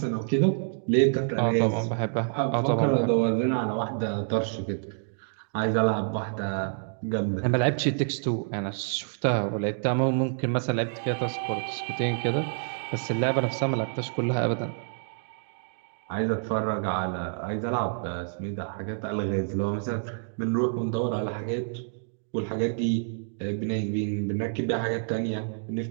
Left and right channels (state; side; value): silent; left; digital silence